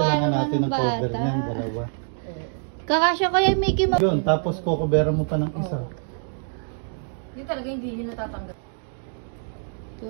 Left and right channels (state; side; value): silent; left; digital silence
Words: natin ng cover niyan, dalawa. Kakasya kaya Mickey Mouse. Yun, tapos kukuberan mo pa ng isa. Yun talaga hindi niya natatanggap.